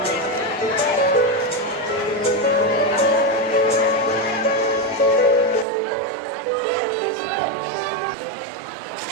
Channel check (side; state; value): left; drops out; at 5.7 s